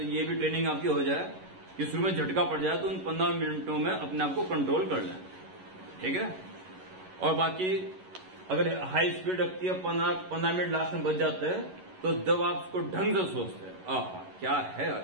ये भी ट्रेनिंग आपकी हो जाए कि शुरू में झटका पड़ जाए तो उन 15 मिनटों में अपने आप को कंट्रोल कर लें। ठीक है, और बाकी अगर हाई स्पीड रखती है 15 मिनट लास्ट में बच जाते हैं, तो जब आप उसको ढंग से सोचते हैं, आहा क्या है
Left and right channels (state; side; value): late; left; 11 ms